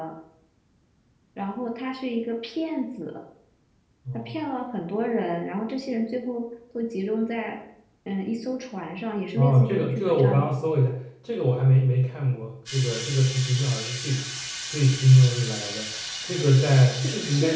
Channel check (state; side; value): identical; both; correlation 1.00